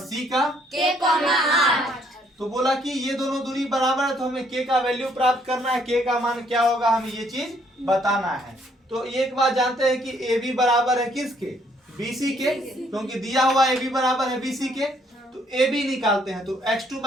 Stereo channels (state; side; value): normal; both; correlation 0.67